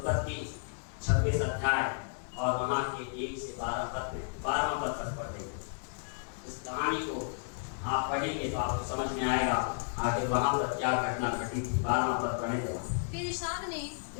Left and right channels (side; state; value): right; silent; digital silence